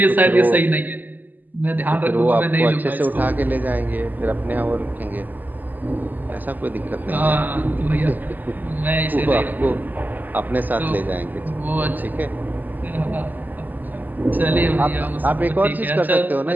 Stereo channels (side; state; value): left; late; 0.085 ms